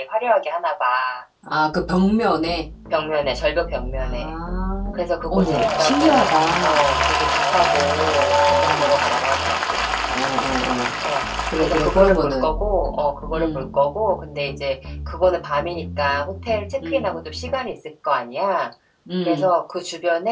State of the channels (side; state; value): both; identical; correlation 1.00